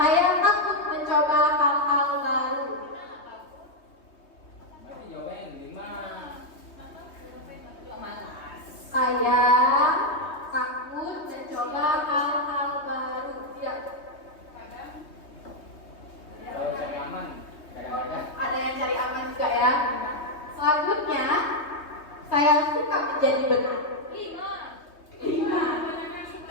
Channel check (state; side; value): late; right; 3.2 ms